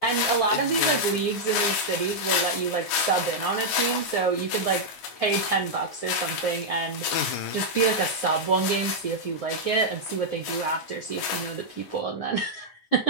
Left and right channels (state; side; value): late; right; 9.5 ms